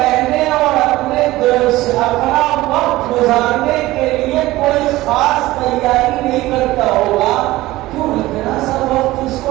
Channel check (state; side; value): quieter; left; 17.8 dB